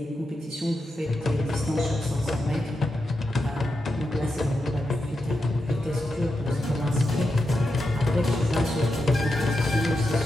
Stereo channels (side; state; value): both; normal; correlation 0.87